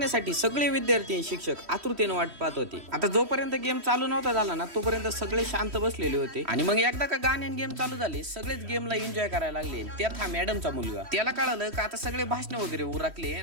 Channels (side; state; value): left; late; 3.1 ms